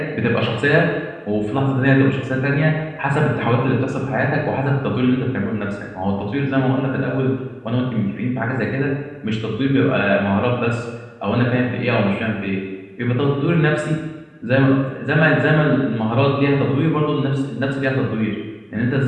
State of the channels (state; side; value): identical; both; correlation 1.00